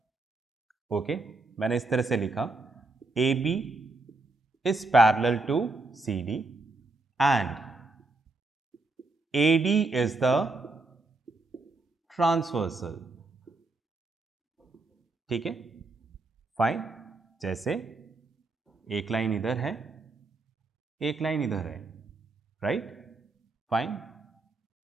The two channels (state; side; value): quieter; left; 3.3 dB